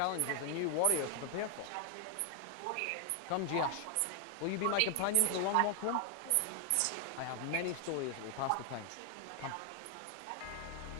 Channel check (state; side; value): different; both; correlation 0.00